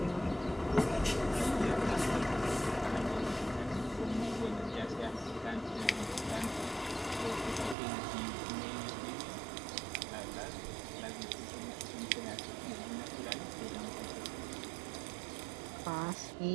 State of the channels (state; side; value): drops out; left; at 7.8 s